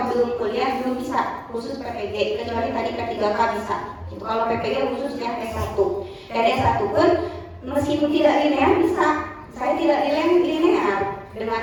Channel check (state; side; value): identical; both; correlation 1.00